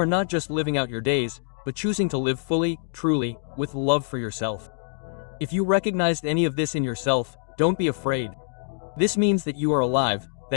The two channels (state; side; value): silent; right; digital silence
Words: not just living out your days, but choosing to live fully, truly, with love for yourself. If you recognized any of this in yourself, don't be afraid. This means that you are alive,